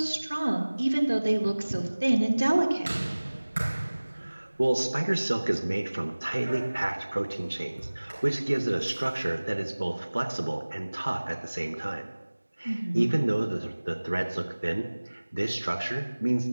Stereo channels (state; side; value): inverted; both; correlation -1.00